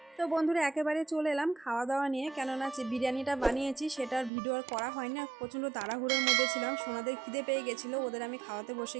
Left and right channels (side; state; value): left; drops out; at 4.3 s